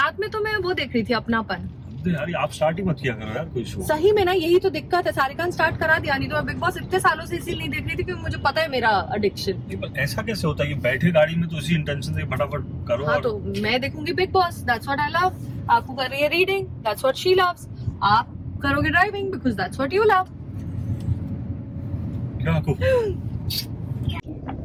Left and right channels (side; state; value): both; identical; correlation 1.00